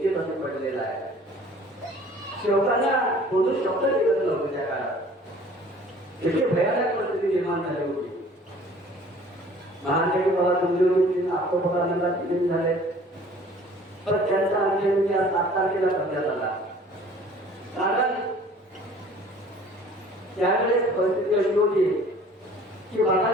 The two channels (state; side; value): normal; both; correlation 0.51